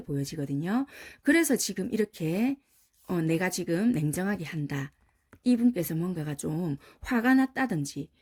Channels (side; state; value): both; identical; correlation 1.00